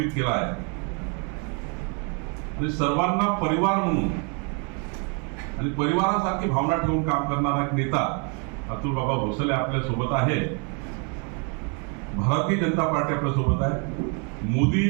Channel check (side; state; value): left; quieter; 35.6 dB